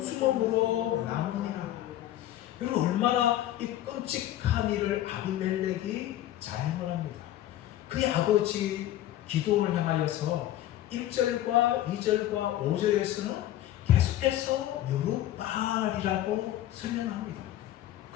남으니라. 여러분, 얼마나 이 끔찍한 일을 아비멜렉이 자행을 합니다. 그의 아버지 기드온을 향하여서 1절과 2절과 5절에서는 계속해서 여룹바알이라고 설명합니다.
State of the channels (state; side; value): quieter; right; 13.3 dB